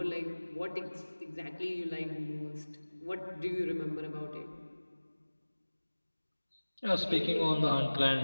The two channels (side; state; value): both; inverted; correlation -1.00